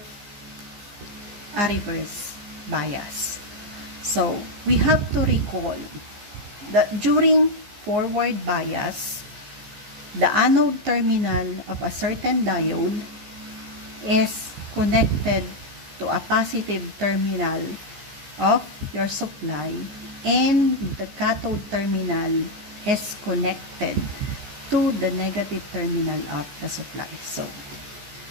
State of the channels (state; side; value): late; left; 15 ms